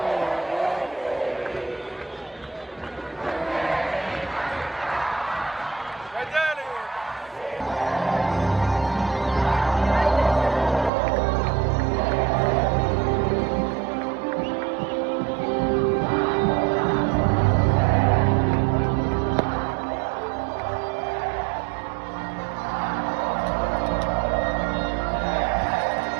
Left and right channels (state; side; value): drops out; left; at 10.9 s